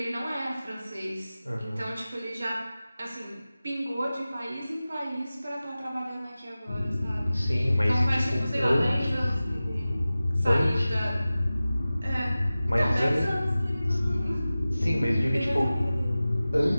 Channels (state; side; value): inverted; both; correlation -0.96